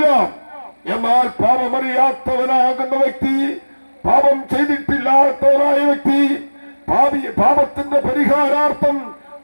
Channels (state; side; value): inverted; both; correlation -1.00